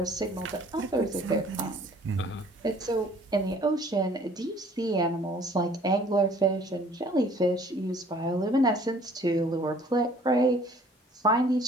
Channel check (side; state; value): both; normal; correlation 0.55